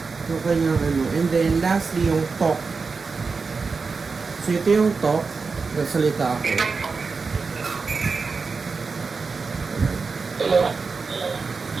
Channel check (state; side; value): quieter; left; 4.7 dB